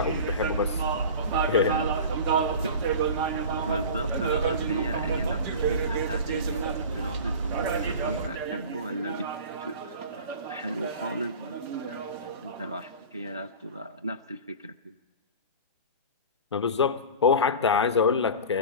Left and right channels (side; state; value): both; inverted; correlation -0.34